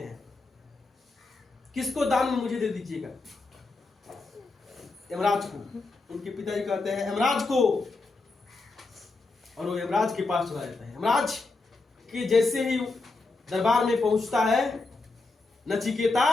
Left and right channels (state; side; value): quieter; right; 3.6 dB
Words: किसको दान में मुझे दे दीजिएगा? यमराज को। उनके पिताजी कहते हैं यमराज को, और वो यमराज के पास चला जाता है। यमराज के जैसे ही दरबार में पहुंचता है नचिकेता,